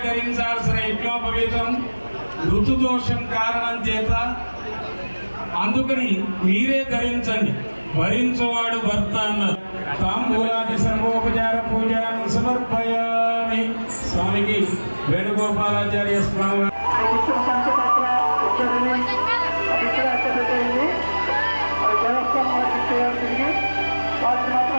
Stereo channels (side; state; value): both; inverted; correlation -1.00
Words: ధరించాల్సిన యజ్ఞోపవీతం ఋతుదోషం కారణం చేత, అందుకని మీరే ధరించండి, భరించువాడు భర్త అన్నారు. తాంబూలాది సర్వోపచార పూజను సమర్పయామి. స్వామికి వేణుగోపాలాచార్య స్వామి